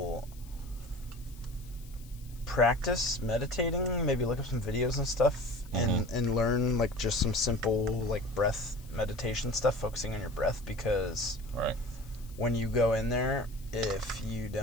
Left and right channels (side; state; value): left; noise; hiss, 23 dB below the sound